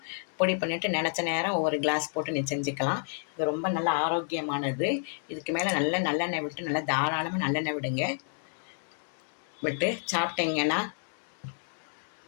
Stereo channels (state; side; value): silent; right; digital silence